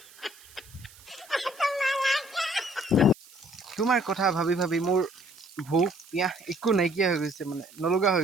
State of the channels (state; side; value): noise; right; hiss, 23 dB below the sound